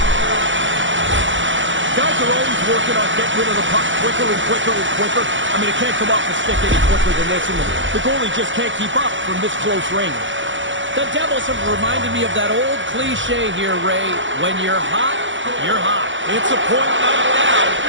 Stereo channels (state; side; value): late; left; 0.55 ms